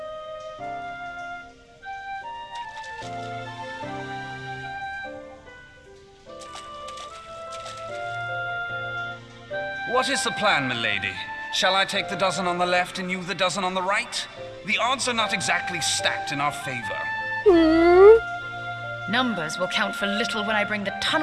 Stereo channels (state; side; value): identical; both; correlation 1.00